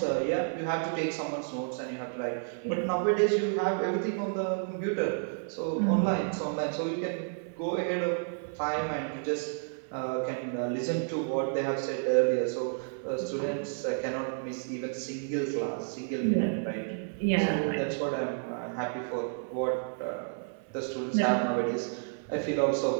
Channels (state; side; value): silent; left; 57 dB below the other